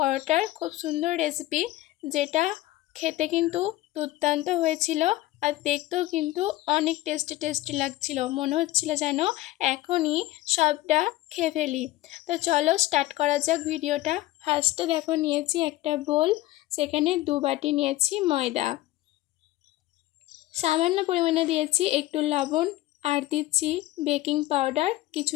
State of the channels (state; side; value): quieter; right; 16.8 dB